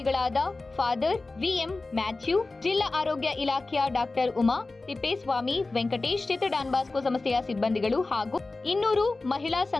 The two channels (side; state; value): right; quieter; 3.4 dB